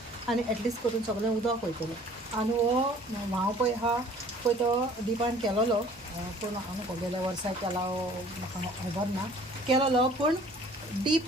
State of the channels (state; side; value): normal; both; correlation 0.52